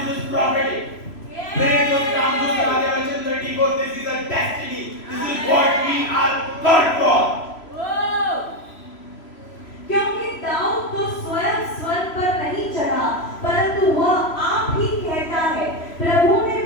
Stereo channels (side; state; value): right; late; 3.0 ms